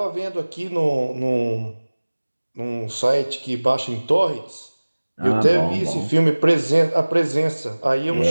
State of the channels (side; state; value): both; inverted; correlation -1.00